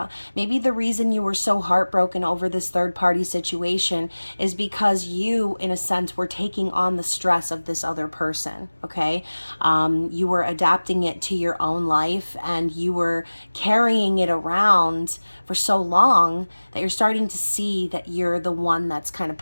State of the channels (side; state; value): both; inverted; correlation -1.00